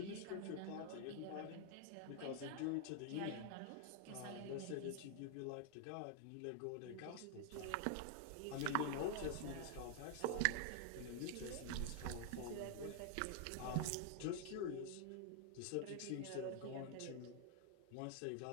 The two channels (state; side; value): different; both; correlation 0.00